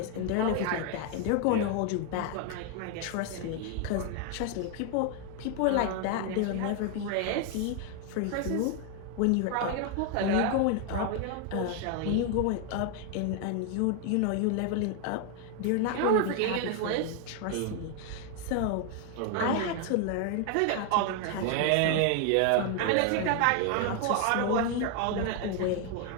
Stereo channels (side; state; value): both; different; correlation 0.01